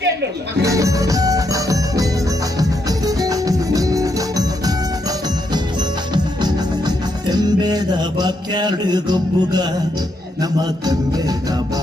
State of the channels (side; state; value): both; normal; correlation 0.78